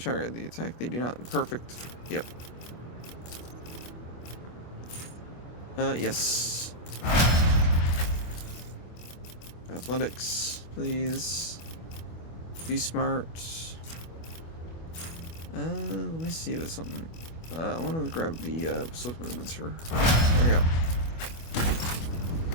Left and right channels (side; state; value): right; late; 25 ms